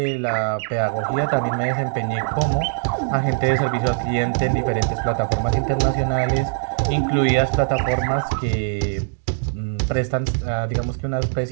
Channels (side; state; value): left; silent; digital silence